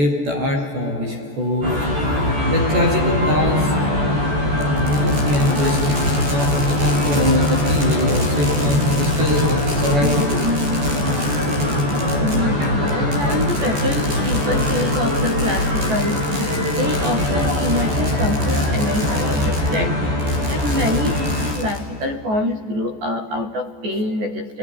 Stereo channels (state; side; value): late; left; 14 ms